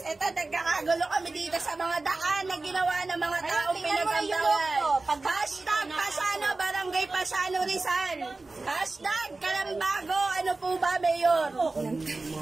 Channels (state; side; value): quieter; left; 3.4 dB